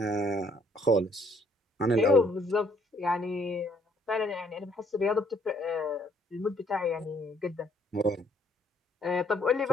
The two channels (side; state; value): both; normal; correlation 0.65